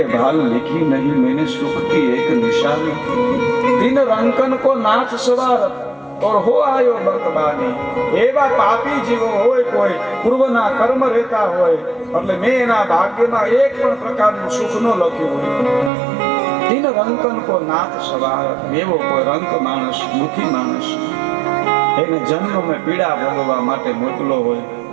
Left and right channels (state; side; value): drops out; left; at 15.9 s